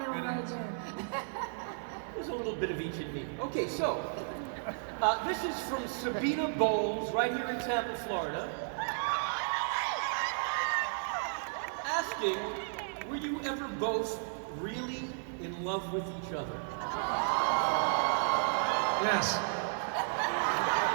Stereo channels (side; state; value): left; silent; 55 dB below the other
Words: road too. There's a little bit of each in me. Okay, so this is from Sabina Bowles, right here in Tampa, Florida. Asking, were you ever both really in love with each other? Yes.